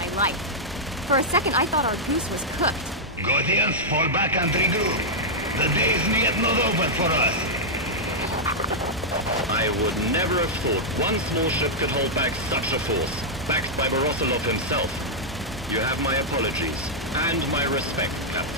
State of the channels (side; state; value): both; normal; correlation -0.07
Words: life. For a second, I thought our goose was cooked. Gothians, fall back and regroup. The day is yet not over for us. I would never have thought one small ship could hold back such a force, backed by Borosilov himself. You have my apologies, and my respect,